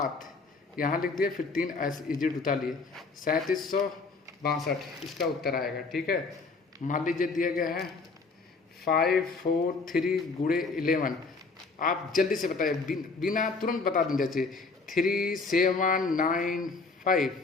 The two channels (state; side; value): quieter; right; 4.1 dB